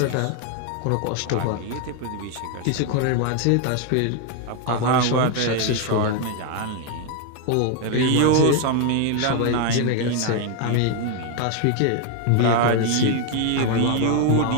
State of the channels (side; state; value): both; different; correlation 0.01